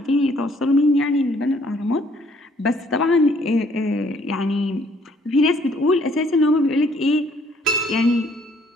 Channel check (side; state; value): both; normal; correlation 0.63